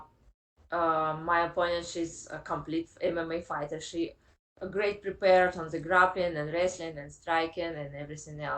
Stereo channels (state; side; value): identical; both; correlation 1.00